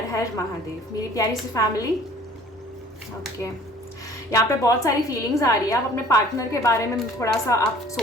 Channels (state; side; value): normal; both; correlation 0.52